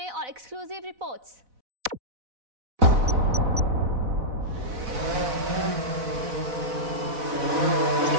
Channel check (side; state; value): left; late; 4.0 ms